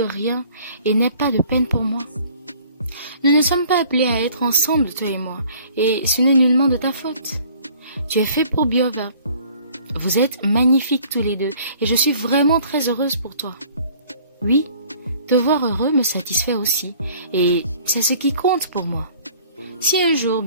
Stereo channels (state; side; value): inverted; both; correlation -0.54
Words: rien et n'aie pas de peine pour moi. Nous ne sommes pas appelés à être ensemble, toi et moi, et ce n'est nullement de ta faute. Tu es fait pour Biova. Vous êtes magnifiques tous les deux, et je suis vraiment très heureuse pour toi. Oui, te voir heureux me satisfait aussi, et c'est ce qui compte pour moi. Si un jour